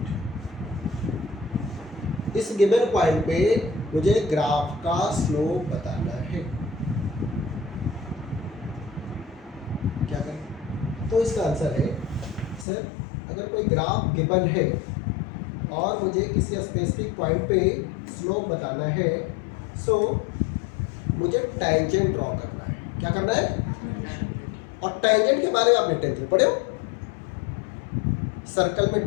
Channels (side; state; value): right; drops out; at 12.7 s